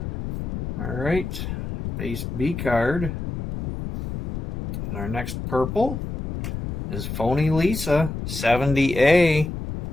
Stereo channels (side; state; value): left; noise; rumble, 6 dB below the sound